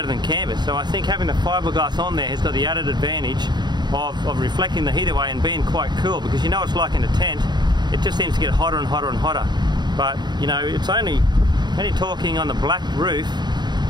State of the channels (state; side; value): late; left; 0.21 ms